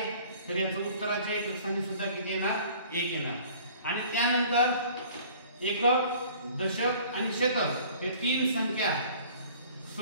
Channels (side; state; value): both; inverted; correlation -0.50